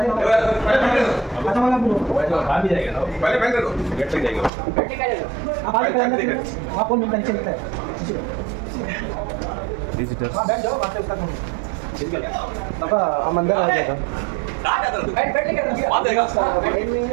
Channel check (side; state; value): left; drops out; at 4.5 s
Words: विजिटर्स हम अंदर आ जाएगा.